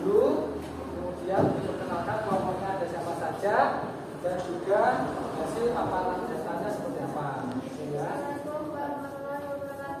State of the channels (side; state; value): both; identical; correlation 1.00